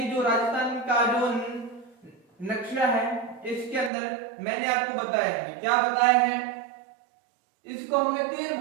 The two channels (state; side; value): drops out; left; at 3.9 s